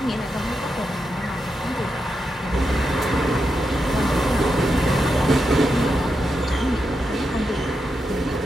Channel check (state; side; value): normal; both; correlation 0.86